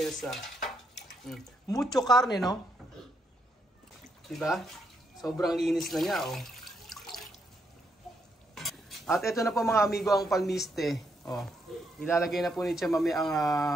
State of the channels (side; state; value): both; normal; correlation 0.78